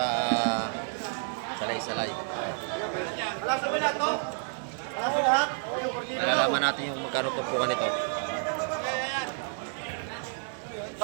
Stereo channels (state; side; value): silent; left; 56 dB below the other